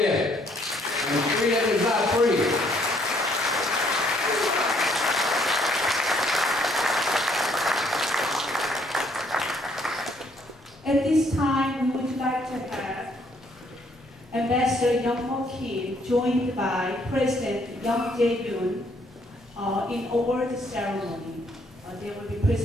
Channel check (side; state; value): both; normal; correlation 0.67